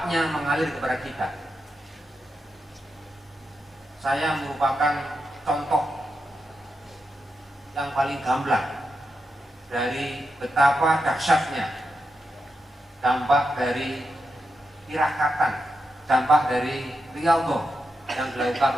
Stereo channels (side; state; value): both; normal; correlation 0.87